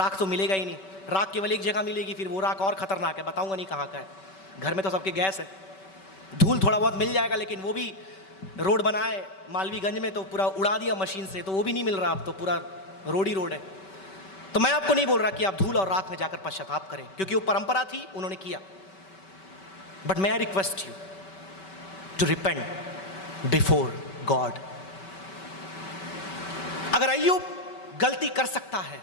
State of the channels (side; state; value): right; late; 5.2 ms